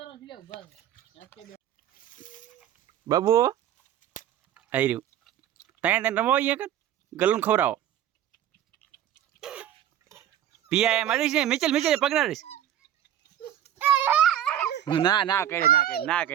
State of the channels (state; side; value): quieter; left; 11.1 dB